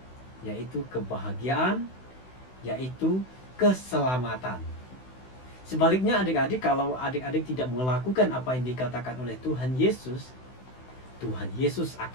yaitu kebahagiaan, yaitu keselamatan. Sebaliknya adik-adik, kalau adik-adik tidak melakukan apa yang dikatakan oleh Tuhan Yesus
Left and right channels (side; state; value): right; late; 16 ms